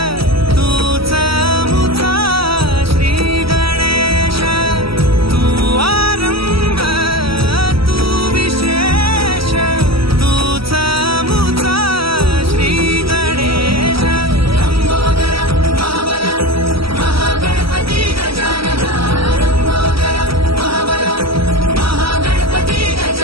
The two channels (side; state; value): left; late; 0.75 ms